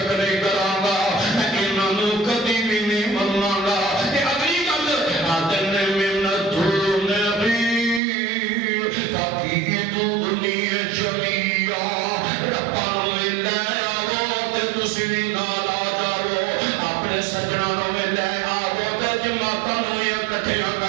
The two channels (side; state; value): left; drops out; at 8.0 s